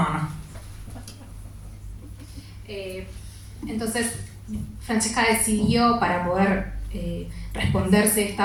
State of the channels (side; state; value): both; identical; correlation 1.00